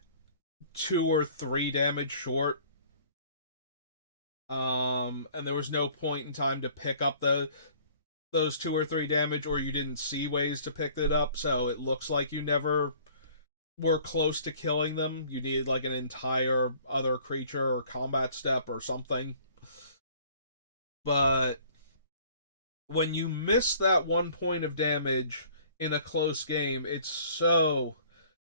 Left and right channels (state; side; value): inverted; both; correlation -0.54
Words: 2 or 3 damage short. And there was no point in time to pick up those 2 or 3 damage, or you didn't see ways to pick it up, so it looks like you never were close to killing them. You needed like an entire other creature or combat step or something. But when you miss that 1 point of damage in a close game, it's so